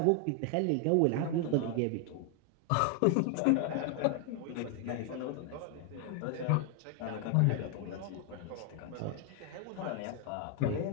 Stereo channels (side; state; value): both; different; correlation 0.00